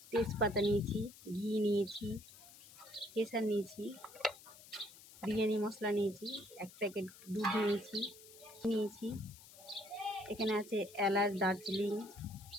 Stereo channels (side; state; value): left; noise; hiss, 19 dB below the sound